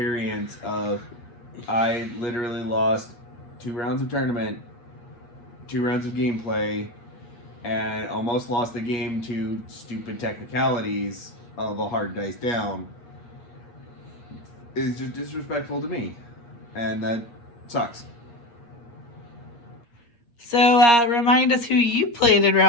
of, I literally lost 2 rounds of tournament, 2 rounds of gameplay, and almost lost the game to stupid technicalities of a hard dice down, is just disrespectful to me. And that sucks. So, remind us who you played in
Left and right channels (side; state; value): right; late; 8.5 ms